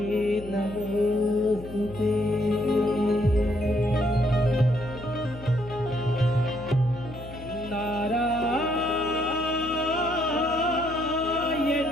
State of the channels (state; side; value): noise; left; hum, 14 dB below the sound